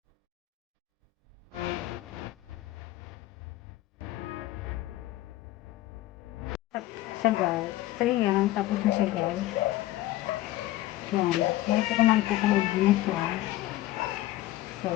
Sagal. So, yan. Tapos na siya, guys. Yan. Meron ko lang po kung mag-business yan. So,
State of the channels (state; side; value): quieter; right; 15.8 dB